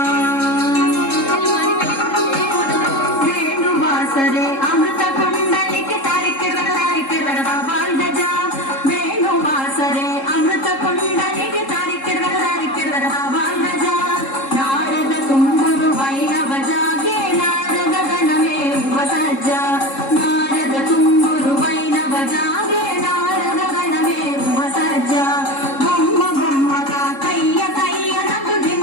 वेणुवासरे अमृत कुंडलिके तारिके रगड़ा बाल गजा वेणुवासरे अमृत कुंडलिके तारिके रगड़ा बाल गजा नारद तुम्बुरु वैणव जागे नारद गणमे वसज्जा नारद तुम्बुरु वैणव जागे नारद गणमे वसज्जा बొమ్మ బొమ్మగా కయ్య కయ్య నకు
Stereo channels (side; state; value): right; late; 3.7 ms